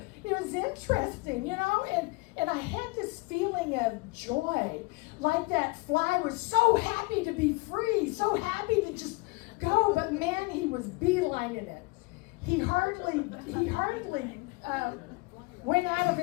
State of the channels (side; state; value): right; quieter; 25.8 dB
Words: interesting, you know, and I had this feeling of joy, like that fly was so happy to be free, so happy to just go, but man, he was beelining it. He hardly went out of